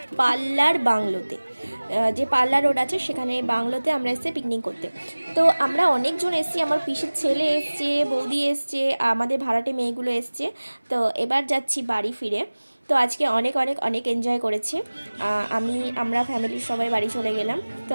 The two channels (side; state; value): both; inverted; correlation -1.00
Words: পাল্লার বাংলোতে, যে পাল্লা রোড আছে সেখানে বাংলোতে আমরা এসেছি পিকনিক করতে। তো আমরা অনেকজন এসেছি, আমার পিসির ছেলে এসছে, বৌদি এসছে, আমাদের ভাড়াটে মেয়েগুলো এসছে। তো এবার যাচ্ছি বাড়ি ফিরে। তো আজকে অনেক অনেক অনেক এনজয় করেছি। আমরা ফ্যামিলির সবাই বাড়ি চলে গেলাম। তো